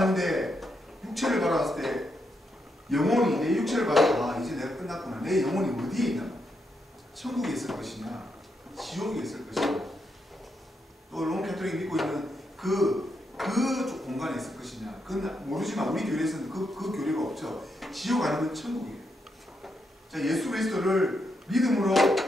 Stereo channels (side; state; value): both; normal; correlation 0.81